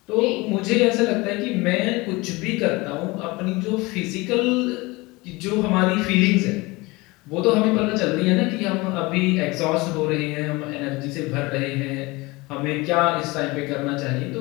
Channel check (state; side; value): quieter; right; 23.2 dB